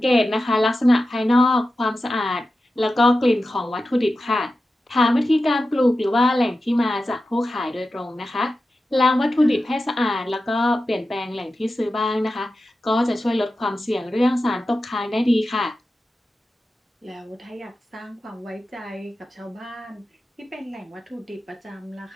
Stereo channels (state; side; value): normal; both; correlation 0.92